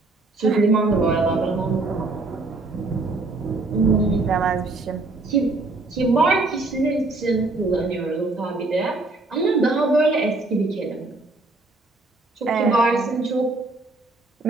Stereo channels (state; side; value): quieter; left; 3.2 dB